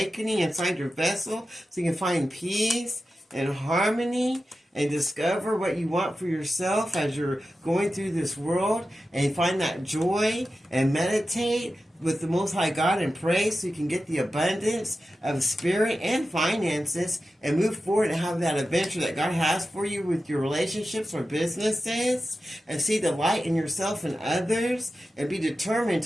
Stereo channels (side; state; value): both; normal; correlation 0.92